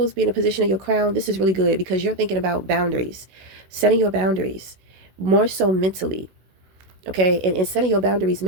being a position of your crown, this is really good because you're thinking about boundaries, setting your boundaries more so mentally. Okay. And setting your boundaries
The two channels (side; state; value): left; late; 16 ms